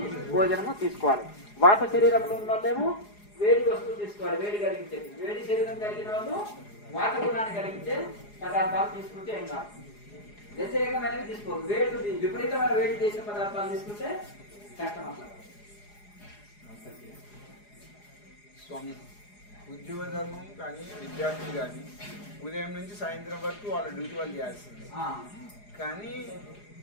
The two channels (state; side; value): late; right; 4.8 ms